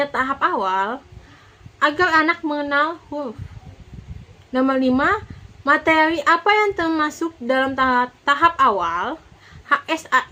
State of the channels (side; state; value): both; identical; correlation 1.00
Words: tahap awal? Agar anak mengenal huruf. Nomor 5, materi apa yang termasuk dalam tahap awal? H, S, A,